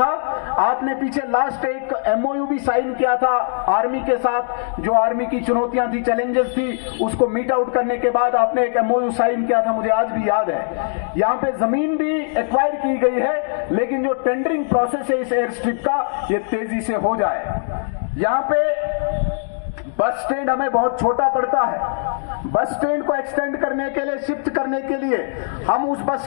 आपने पीछे लास्ट एक MOU भी साइन किया था आर्मी के साथ। जो आर्मी की चुनौतियां थी, चैलेंजेस थी, उसको मीट आउट करने के बाद आपने एक MOU साइन किया था, मुझे आज भी याद है। यहाँ पे जमीन भी एक्वायर की गई है, लेकिन जो टेंडरिंग प्रोसेस है इस एयर स्ट्रिप का, ये तेजी से हो जाए। यहाँ पे बस स्टैंड हमें बहुत छोटा पड़ता है। बस स्टैंड को एक्सटेंड करने के लिए, शिफ्ट करने के लिए हम उस बस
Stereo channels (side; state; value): right; silent; digital silence